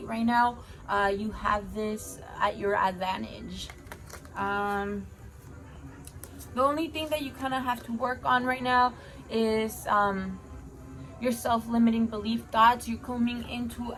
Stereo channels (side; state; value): both; identical; correlation 1.00